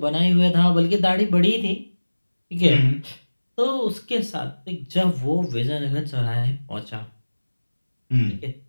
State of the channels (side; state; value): both; inverted; correlation -1.00